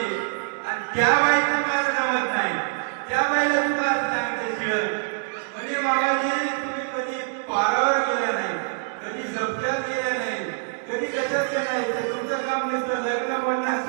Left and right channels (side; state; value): left; silent; digital silence